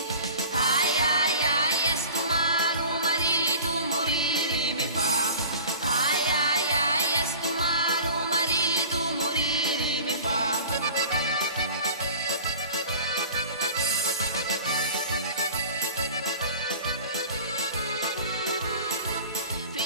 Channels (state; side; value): inverted; both; correlation -0.40